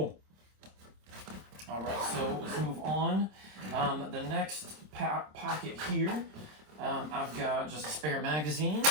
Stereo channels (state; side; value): late; left; 26 ms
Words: All right, so let's move on. The next pocket here, I've got just a spare magazine,